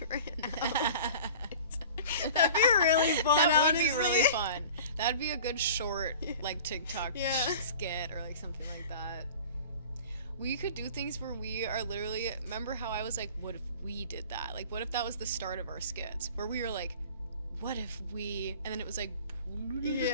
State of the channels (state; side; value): inverted; both; correlation -0.42